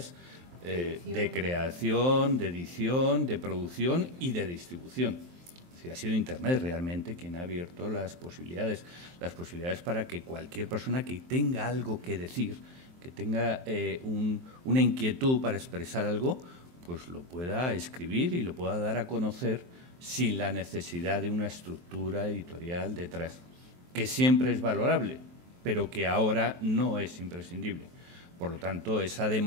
de creación, de edición, de producción y de distribución. Es decir, ha sido Internet realmente quien ha abierto las posibilidades para que cualquier persona que tenga algo que decir, que tenga una inquietud para expresar algo, pues lo pueda escribir y lo pueda dar a conocer sin la necesidad de una estructura editorial detrás, que siempre es valorable, pero que ahora no es imprescindible. Por lo tanto, esa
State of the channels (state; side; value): late; left; 23 ms